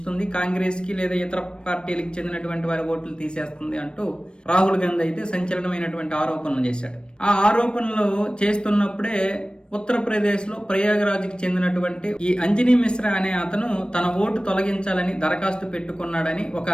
కాంగ్రెస్ కి లేదా ఇతర పార్టీలకు చెందినటువంటి వారి ఓట్లు తీసేస్తుంది అంటూ రాహుల్ గాంధీ అయితే సంచలనమైనటువంటి ఆరోపణలు చేశాడు. ఆ ఆరోపణలు చేస్తున్నప్పుడే ఉత్తరప్రదేశ్లో ప్రయాగరాజ్కి చెందినటువంటి ఈ అంజనీ మిశ్రా అనే అతను తన ఓటు తొలగించాలని దరఖాస్తు పెట్టుకున్నాడని ఒక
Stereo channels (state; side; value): late; right; 0.054 ms